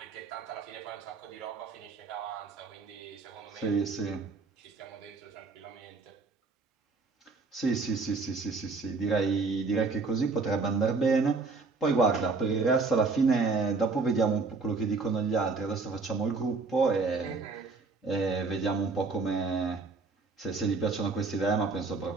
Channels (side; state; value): left; quieter; 4.2 dB